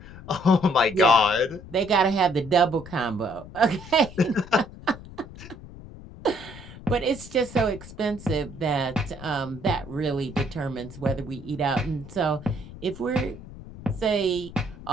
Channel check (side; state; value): left; noise; rumble, 16 dB below the sound